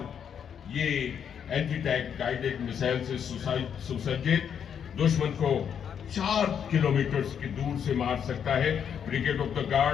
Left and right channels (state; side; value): quieter; right; 8.0 dB